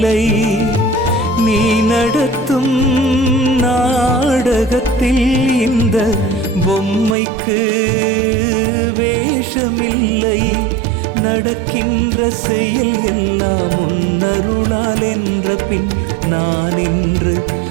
நீ நடத்தும் நாடகத்தில் இந்த பொம்மைக்கு வேஷமில்லை. நடக்கின்ற செயல் எல்லாம் உன்னருளால் என்ற பின் நான் என்று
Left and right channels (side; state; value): left; drops out; at 7.2 s